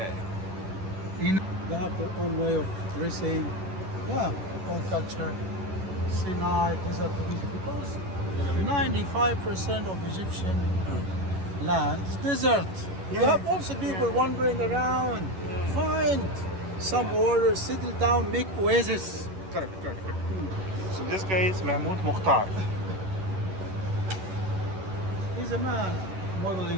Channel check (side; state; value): left; late; 11 ms